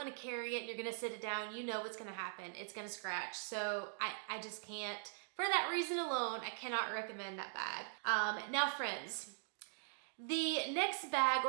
to carry it and you're going to sit it down, you know what's going to happen. It's going to scratch. So I just can't, for that reason alone, I cannot recommend that bag. Now friends, the next bag,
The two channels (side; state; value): left; silent; digital silence